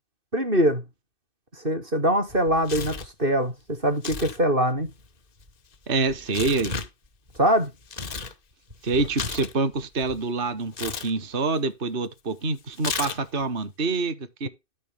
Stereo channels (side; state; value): left; late; 2.6 ms